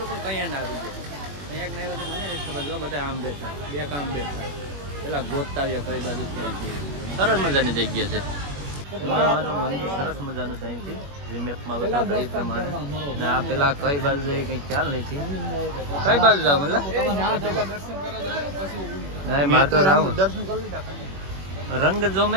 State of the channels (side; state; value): left; late; 21 ms